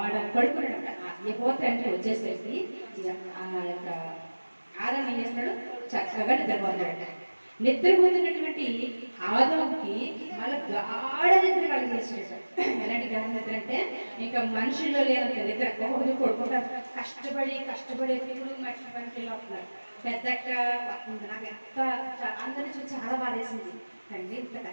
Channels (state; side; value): inverted; both; correlation -1.00